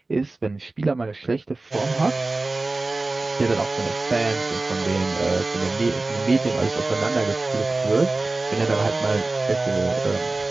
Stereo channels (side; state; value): left; quieter; 3.2 dB